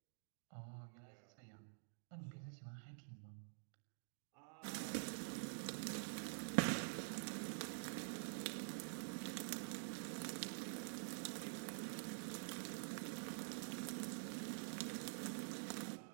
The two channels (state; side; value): silent; left; digital silence